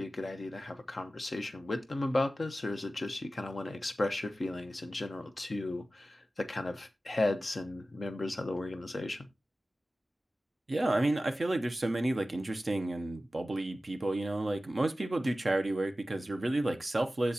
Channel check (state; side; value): normal; both; correlation 0.95